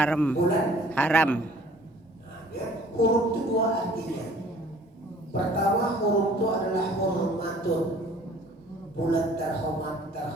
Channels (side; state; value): both; normal; correlation 0.53